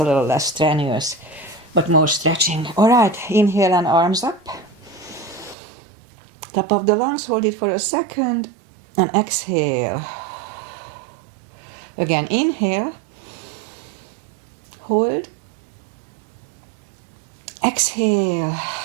a little less strenuous, but more stretching. All right, inhale and arms up. Top of the lungs, hold it for a second. And exhale. Again, inhale. Hold. Exhale.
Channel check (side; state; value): left; drops out; at 5.6 s